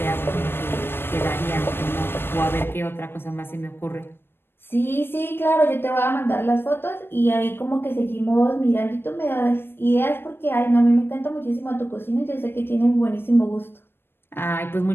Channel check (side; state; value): right; late; 0.10 ms